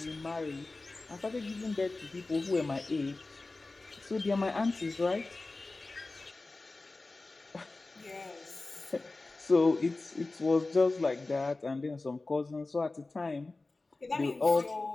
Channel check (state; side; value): quieter; right; 3.3 dB